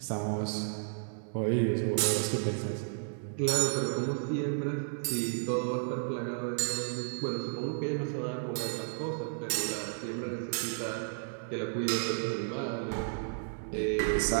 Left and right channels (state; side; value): silent; left; 55 dB below the other